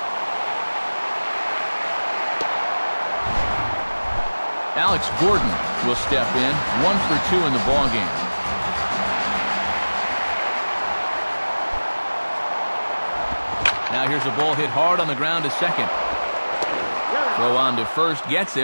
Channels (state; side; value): inverted; both; correlation -1.00